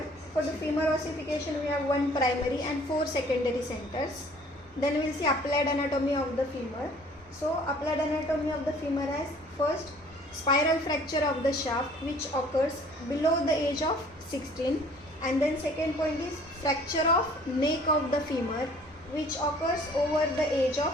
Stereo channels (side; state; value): both; normal; correlation 0.54